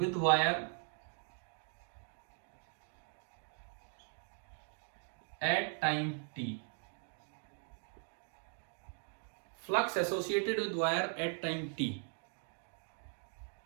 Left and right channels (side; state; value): left; silent; 51 dB below the other